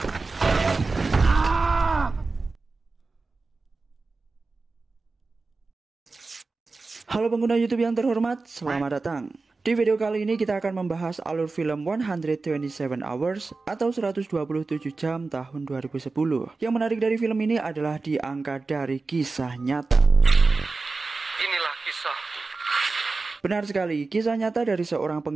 Halo pengguna YouTube yang terhormat, selamat datang. Di video kali ini kita akan membahas alur film 127 Hours atau 127 jam tahun 2010. Yang menarik dari film ini adalah diangkat dari kisah nyata. Inilah kisah. Benar sekali, kisah nyata dari seorang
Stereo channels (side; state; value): left; quieter; 3.8 dB